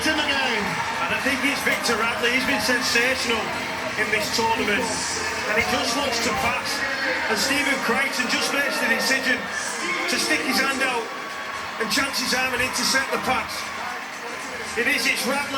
in the game. And I think it's Victor Radley. He's been sensational in this tournament. And he just looks to pass. And Stephen Crichton just makes the decision to stick his hand out and chance his arm and intercept the pass. It's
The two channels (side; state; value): both; identical; correlation 1.00